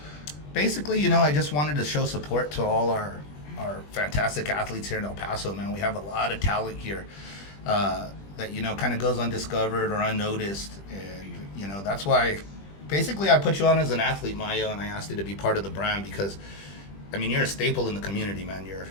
basically, I just wanted to show support to all our fantastic athletes here in El Paso, man. We have a lot of talent here that, kind of goes undiscovered or unnoticed. And, that's why basically I put you on as an athlete, Mayo, and I asked you to be part of the brand because, you're a staple in the community, man.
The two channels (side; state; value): right; late; 20 ms